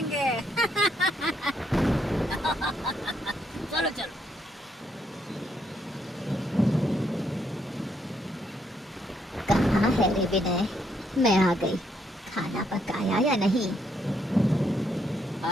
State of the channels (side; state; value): both; normal; correlation 0.74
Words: चलो चलो। कहाँ है रे विनय? मैं आ गई। खाना पकाया या नहीं?